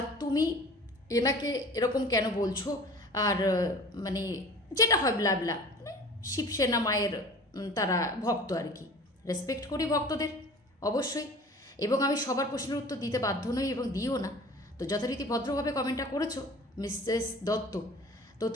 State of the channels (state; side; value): normal; both; correlation 0.43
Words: তুমি এনাকে এরকম কেন বলছো, আর মানে যেটা হয় ব্লা ব্লা, শিবসেনা মায়ের তারা ভক্ত আর কি, রেসপেক্ট করি ভক্তদের অবশ্যই, এবং আমি সবার প্রশ্নের উত্তর দিতে বাধ্য নই এবং দিও না। তো যথারীতি ভদ্রভাবে কমেন্টটা করেছো মিসেস দত্ত। তো